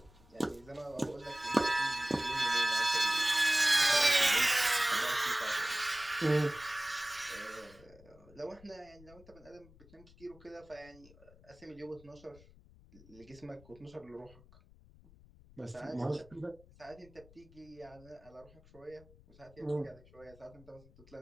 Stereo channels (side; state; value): left; noise; rumble, 24 dB below the sound